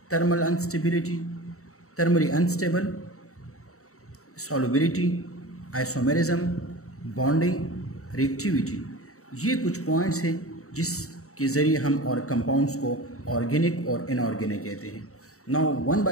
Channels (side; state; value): right; late; 0.64 ms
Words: thermally unstable, solubility, isomerism, bonding, reactivity. ये कुछ पॉइंट्स हैं जिसके ज़रिए हम और कंपाउंड्स को ऑर्गेनिक और इनऑर्गेनिक कहते हैं. नाउ वन